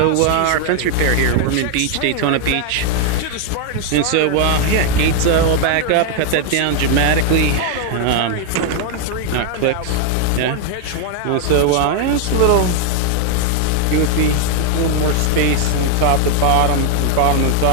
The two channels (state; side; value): different; both; correlation 0.00